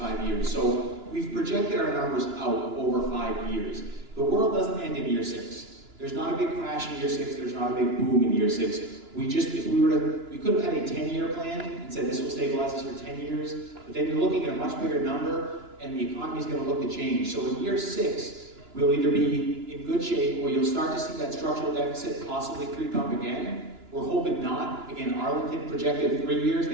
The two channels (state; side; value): late; left; 2.9 ms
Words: years? So we've projected our numbers out over 5 years. The world doesn't end in year 6. There's not a big crash in year 6. There's not a big boom in year 6. We could have had a 10-year plan and said this will stabilize us for 10 years, but then you're looking at a much bigger number and the economy is going to look to change. So in year 6, we'll either be in good shape or you'll start to see that structural deficit possibly creep up again. We're hoping not. Again, Arlington projected 3 years,